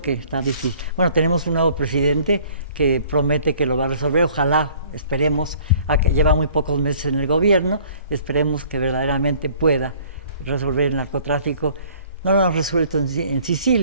que está difícil. Bueno, tenemos un nuevo presidente que promete que lo va a resolver, ojalá, esperemos, lleva muy pocos meses en el gobierno, esperemos que verdaderamente pueda resolver el narcotráfico. No lo han resuelto en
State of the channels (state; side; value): inverted; both; correlation -0.54